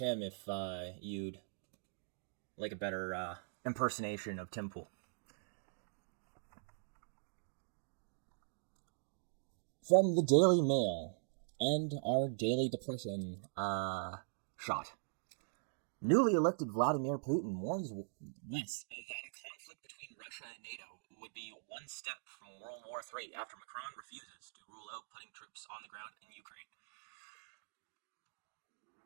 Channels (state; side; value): silent; left; digital silence